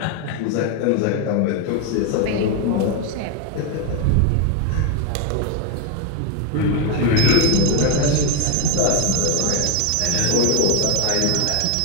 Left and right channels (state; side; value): different; both; correlation 0.01